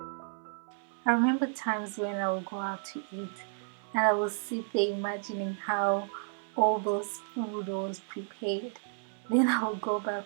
I remember times when I would go out to eat and I would sit there imagining how all those food was prepared. Then I would go back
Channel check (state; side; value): silent; left; 56 dB below the other